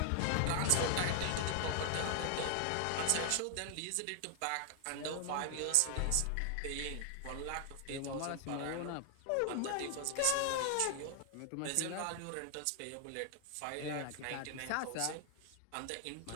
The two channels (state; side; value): different; both; correlation 0.00